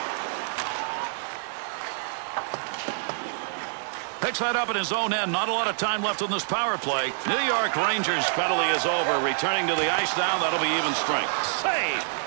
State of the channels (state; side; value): silent; left; digital silence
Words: Picks that up in his own end. Not a lot of time left on this power play. New York Rangers penalty is over. Returning to the ice now, that'll be even strength. Save!